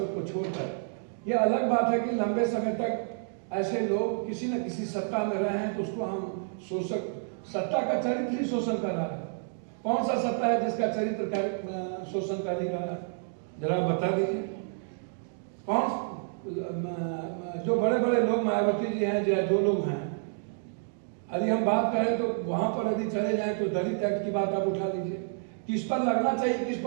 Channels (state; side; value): silent; left; digital silence